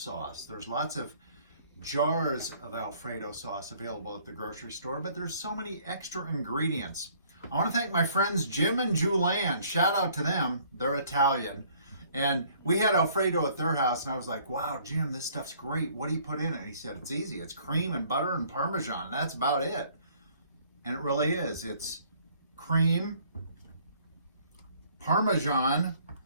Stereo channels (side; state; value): both; inverted; correlation -0.60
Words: There's lots of jars of Alfredo sauce available at the grocery store, but there's so many extra ingredients. I want to thank my friends Jim and Julianne. Shout out to them. They're Italian. And we had Alfredo at their house, and I was like, wow, Jim, this stuff's great. What do you put in it? And he said, it's easy. It's cream and butter and Parmesan. That's about it. And it really is. It's cream, Parmesan